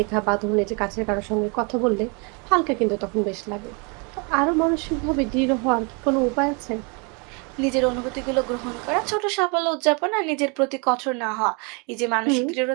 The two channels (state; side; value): quieter; left; 33.2 dB